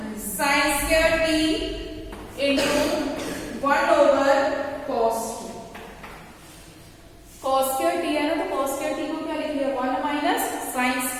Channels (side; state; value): both; identical; correlation 1.00